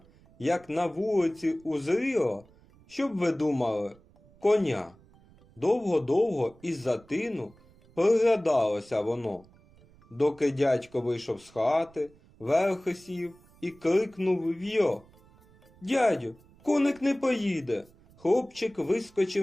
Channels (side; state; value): right; noise; rumble, 28 dB below the sound